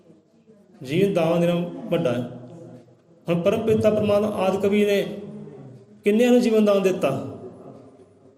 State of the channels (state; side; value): identical; both; correlation 1.00